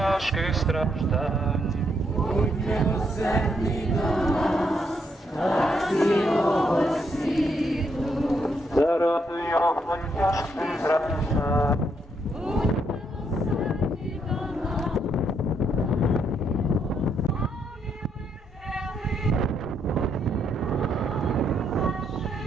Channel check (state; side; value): normal; both; correlation 0.75